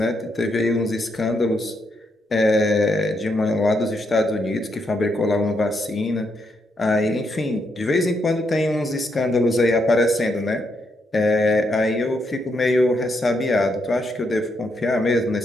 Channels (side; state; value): both; normal; correlation 0.79